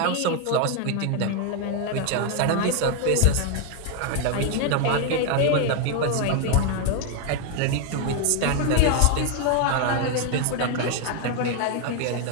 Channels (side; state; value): both; different; correlation 0.01